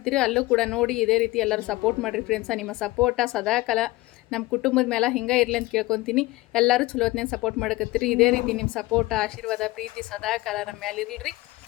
ಅಲ್ಲೂ ಕೂಡ ನೋಡಿ ಇದೇ ರೀತಿ ಎಲ್ಲರೂ ಸಪೋರ್ಟ್ ಮಾಡಿರಿ ಫ್ರೆಂಡ್ಸ ನಿಮ್ಮ ಸಪೋರ್ಟ ಸದಾಕಾಲ ನಮ್ಮ ಕುಟುಂಬದ ಮೇಲೆ ಹಿಂಗೆ ಇರಲಿ ಅಂತ ಕೇಳ್ಕೊತೀನಿ ಎಲ್ಲರೂ ಚಲೋ ಹೊತ್ನಾಗ ಸಪೋರ್ಟ್ ಮಾಡಕತ್ತೀರಿ ಇದೇ ರೀತಿ ನಿಮ್ಮ ಸಪೋರ್ಟ ಆಶೀರ್ವಾದ ಪ್ರೀತಿ ಸದಾಕಾಲ ನಮ್ಮ ಮೇಲೆ ಇರಲಿ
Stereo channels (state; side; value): quieter; right; 19.9 dB